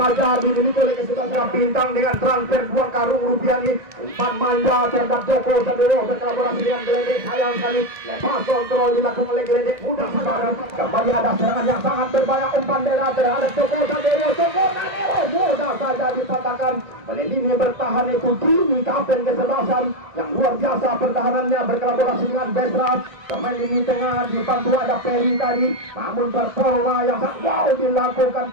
dimiliki oleh kesuksesan Bintang dengan transfer 2 karung rupiah ini. Umpan manja terhadap Joko Sadowo berkolaborasi dengan Geledek. Sayang sekali lepas kontrol dilakukan oleh Geledek. Mudah sepadan. Kembali ada serangan yang sangat berbahaya. Umpan Dera terhadap Joko Sadowo. Joko Sadowo mudah saja dipatahkan. Oleh ini bertahan itu Dini kapten kesebelasan yang luar biasa pertahanannya berkolaborasi dengan Besra. Pemain ini tengah dibantu ada Peri tadi, namun performa yang sangat wow dilakukan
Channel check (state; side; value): late; left; 1.6 ms